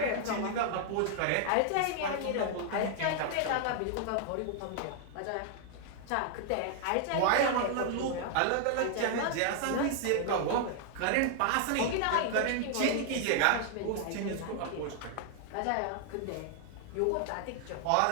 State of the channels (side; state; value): both; different; correlation 0.00